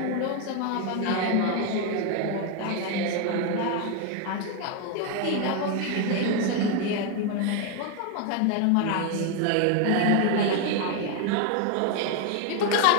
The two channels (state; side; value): different; both; correlation 0.01